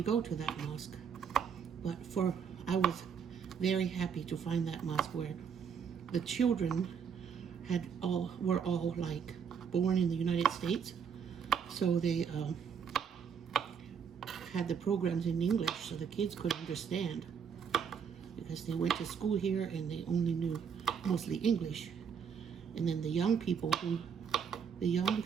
go to that mosque. But I was very happy to find that mosque where the children were all like born in the United States, so they had the programs in English so the kids could understand, because they went to school here and they only knew mostly English. And then the young people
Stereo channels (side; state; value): left; quieter; 7.1 dB